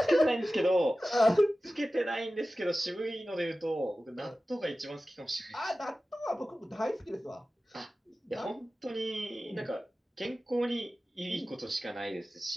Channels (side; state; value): both; normal; correlation 0.95